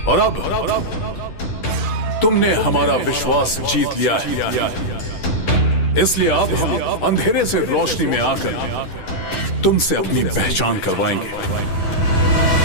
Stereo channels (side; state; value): right; late; 10 ms